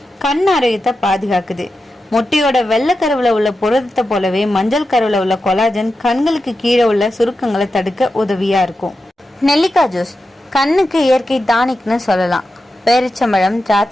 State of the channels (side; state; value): both; normal; correlation 0.90